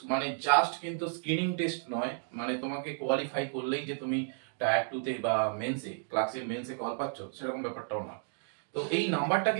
মানে জাস্ট কিন্তু স্ক্রিনিং টেস্ট নয়, মানে তোমাকে কোয়ালিফাই করলেই যে তুমি টায়ার 2 তে বা মেন্সে ক্লার্কশিপ মেন্সে কল পাচ্ছ সেরকম ব্যাপারটাও নয়। তো এই নাম্বারটা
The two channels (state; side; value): silent; left; digital silence